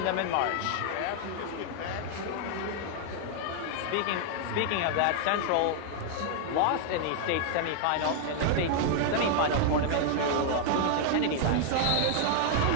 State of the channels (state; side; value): different; both; correlation 0.00